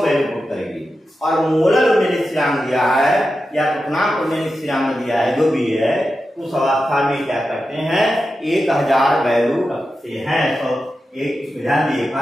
वैल्यू पुट करेंगे, और मोलर उन्नयन स्थिरांक दिया है या पथनांक उन्नयन स्थिरांक दिया है, जो भी है, उस अवस्था में क्या करते हैं, 1000 वैल्यू रखते हैं। तो एक ध्यान दिए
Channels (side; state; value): both; normal; correlation 0.91